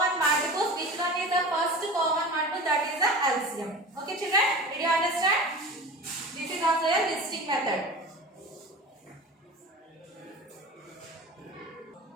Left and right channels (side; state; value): both; normal; correlation 0.34